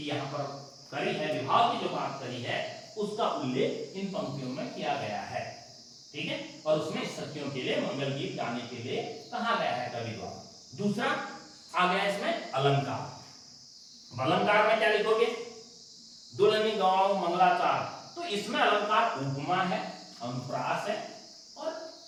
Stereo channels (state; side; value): identical; both; correlation 1.00